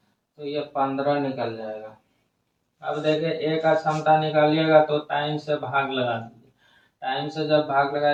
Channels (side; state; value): both; identical; correlation 1.00